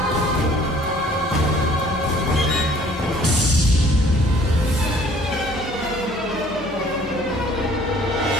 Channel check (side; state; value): both; normal; correlation 0.55